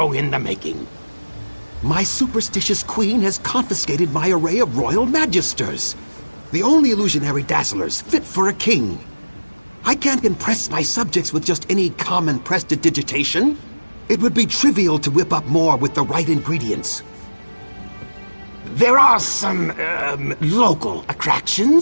in the making. My superstitious queen has confiscated my array of royal magisters, the only illusionary dazzlers fit for a king. I can't impress my subjects with just any common prestidigitation. It would be trivial to whip up more with the right ingredients. There are some, local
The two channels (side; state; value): both; inverted; correlation -1.00